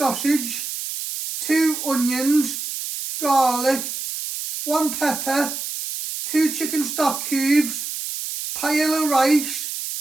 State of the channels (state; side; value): noise; right; hiss, 6 dB below the sound